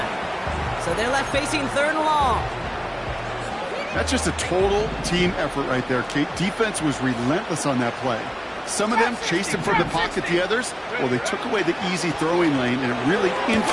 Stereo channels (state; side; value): identical; both; correlation 1.00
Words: So they're left facing 3rd and long. That's just a total team effort right there, Kate. Defense was relentless on that play. Some of them chased him from the pocket. The others, well, they took away the easy throwing lane, and it really